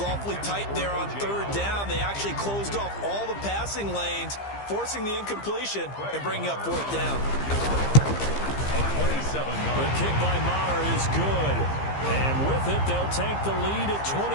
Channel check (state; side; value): late; right; 15 ms